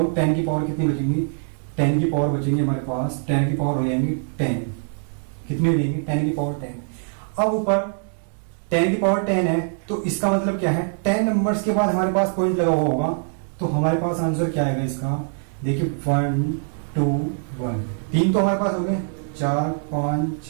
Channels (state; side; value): silent; left; 61 dB below the other